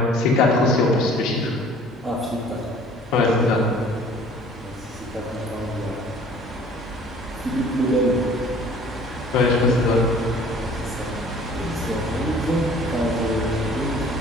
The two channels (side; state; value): both; normal; correlation 0.51